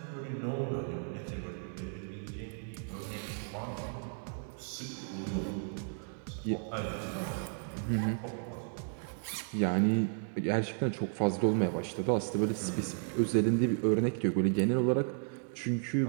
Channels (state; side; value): silent; left; 55 dB below the other